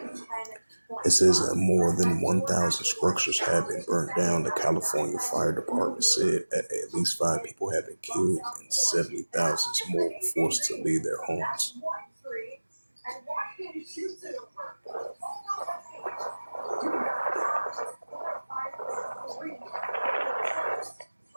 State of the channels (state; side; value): inverted; both; correlation -1.00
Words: It says that more than 1,000 structures have been burnt down. The California Fire Department said at least 5 people have been killed and 70,000 more were forced to leave their homes.